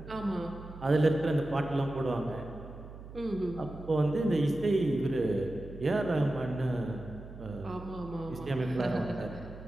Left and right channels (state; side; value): noise; right; hum, 14 dB below the sound